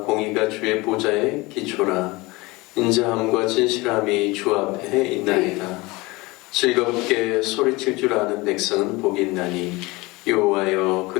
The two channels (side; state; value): right; quieter; 23.0 dB